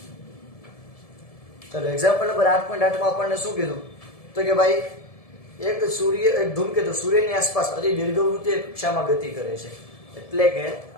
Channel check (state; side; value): late; right; 1.7 ms